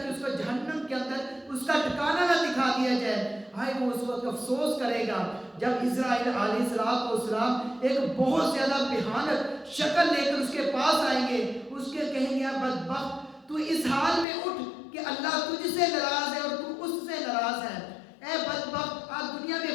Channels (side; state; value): right; drops out; at 14.2 s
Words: اس کو جہنم کے اندر اس کا ٹھکانہ نہ دکھا دیا جائے۔ ہائے وہ اس وقت افسوس کرے گا جب اسرائیل علیہ السلام ایک بہت زیادہ بھیانک شکل لے کر اس کے پاس آئیں گے، اس کے کہیں گے بدبخت تو اس حال میں اٹھ کہ اللہ تجھ سے ناراض ہے اور تو اس سے ناراض ہے، اے بدبخت آج دنیا میں